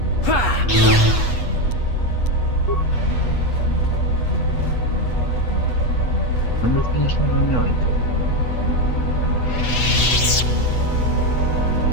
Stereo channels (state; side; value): late; right; 8.2 ms